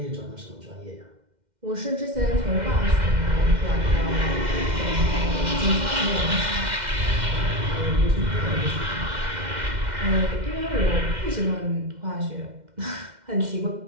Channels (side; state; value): left; late; 2.1 ms